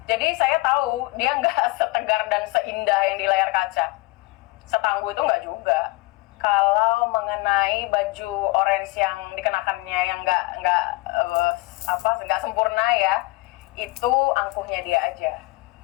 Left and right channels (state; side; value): quieter; right; 22.5 dB